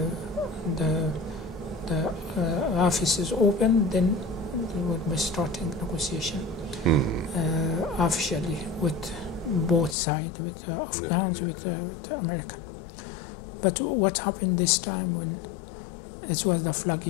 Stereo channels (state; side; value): drops out; right; at 10.0 s